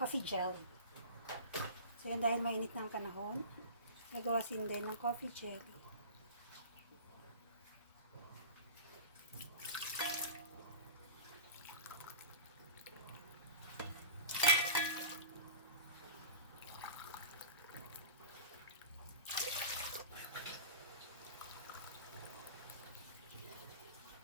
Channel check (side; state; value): both; inverted; correlation -0.34